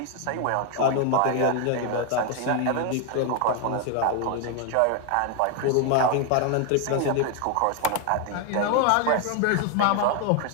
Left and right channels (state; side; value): different; both; correlation 0.01